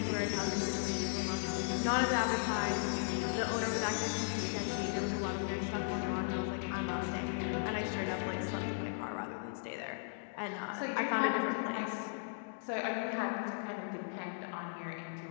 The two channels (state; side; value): silent; right; digital silence